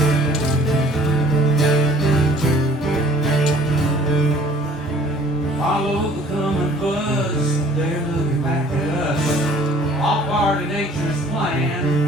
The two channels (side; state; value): both; normal; correlation 0.54